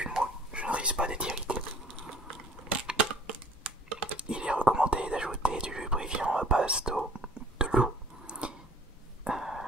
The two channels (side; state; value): both; normal; correlation 0.51